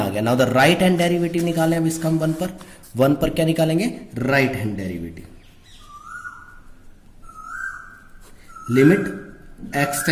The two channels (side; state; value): both; identical; correlation 1.00